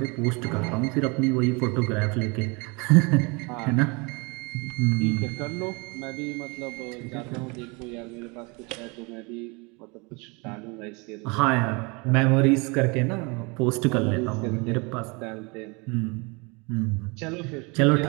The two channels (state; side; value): quieter; left; 29.1 dB